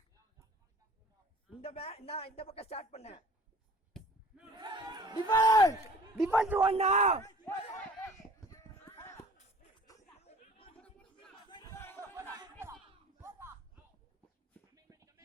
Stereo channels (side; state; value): both; normal; correlation 0.48